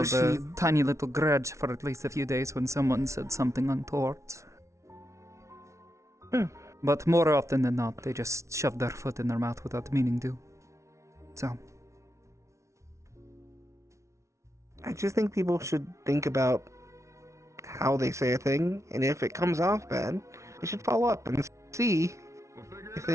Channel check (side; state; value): left; late; 0.14 ms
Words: wish a he- tiny little grudge for at least a few days when someone said something untoward. But more often than not, they just shove their foot in their mouth without meaning to. So, I just think people should think about how they say a thing, and if it comes off bad, they should follow up and see if